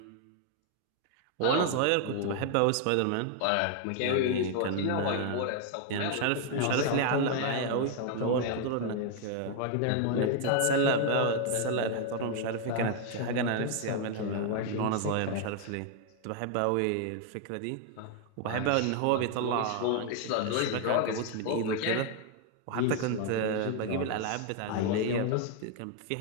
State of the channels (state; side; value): different; both; correlation 0.00